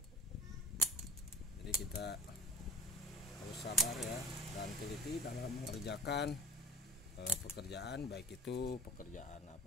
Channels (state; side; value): normal; both; correlation 0.41